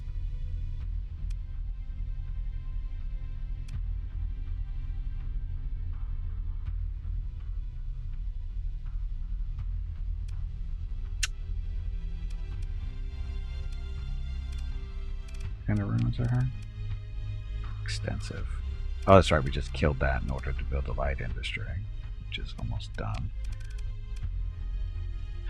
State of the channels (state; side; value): identical; both; correlation 1.00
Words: What kind of ruins are her? Extensive. Oh, that's right. We just killed that in order to build a light industry, which is almost done.